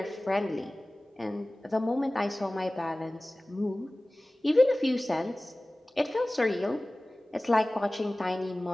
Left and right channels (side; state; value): both; normal; correlation 0.98